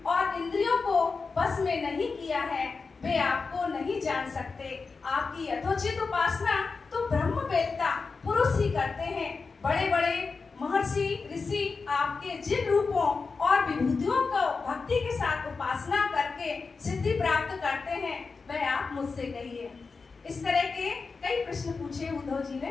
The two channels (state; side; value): quieter; right; 4.5 dB